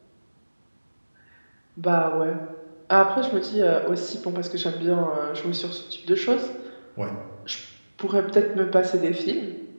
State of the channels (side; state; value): both; inverted; correlation -1.00